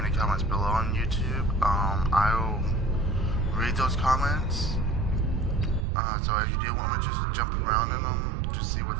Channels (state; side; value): drops out; left; at 5.9 s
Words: the comments below on YouTube. I will read those comments. So if you do want me to just jump around in them, just see what